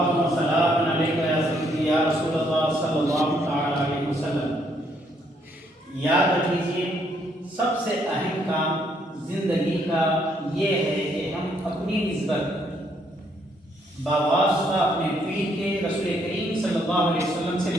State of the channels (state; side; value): normal; both; correlation 0.70